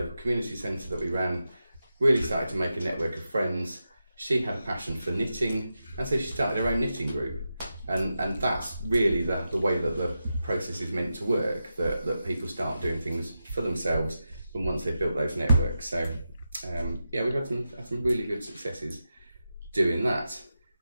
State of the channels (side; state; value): both; inverted; correlation -0.89